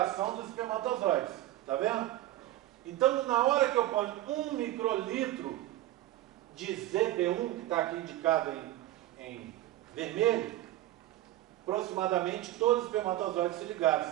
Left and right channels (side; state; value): left; quieter; 15.0 dB